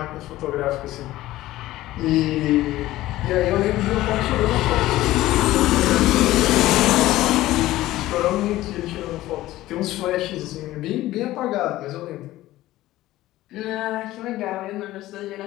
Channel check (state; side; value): quieter; right; 16.1 dB